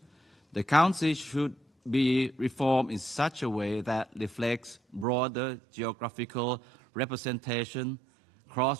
The Council should be reformed in such a way that reflects broader geographical representation,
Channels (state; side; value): drops out; left; at 5.1 s